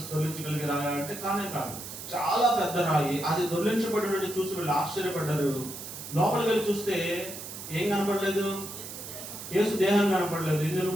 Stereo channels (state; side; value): noise; right; hiss, 10 dB below the sound